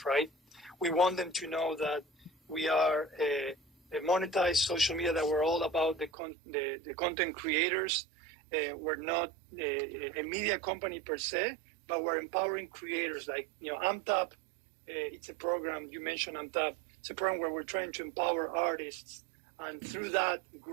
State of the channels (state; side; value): drops out; left; at 6.1 s